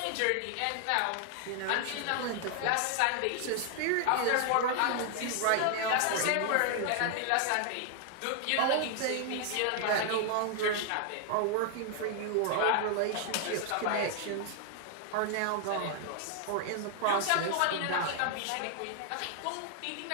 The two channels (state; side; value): different; both; correlation 0.00